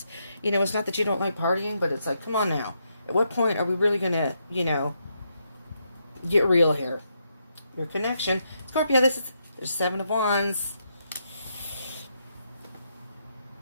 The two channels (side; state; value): both; inverted; correlation -0.79